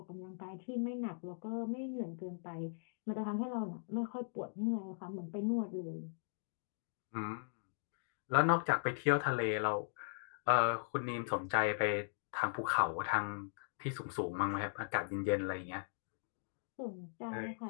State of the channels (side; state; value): right; silent; digital silence